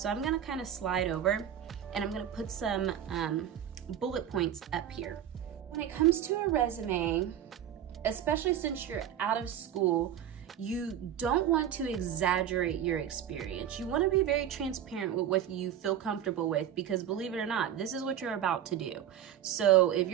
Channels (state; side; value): quieter; left; 10.1 dB